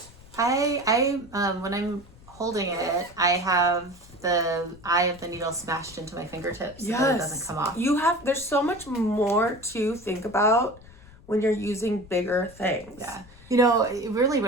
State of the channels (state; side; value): noise; left; rumble, 22 dB below the sound